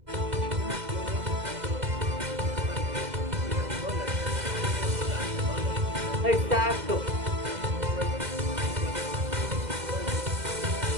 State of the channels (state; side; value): late; left; 2.0 ms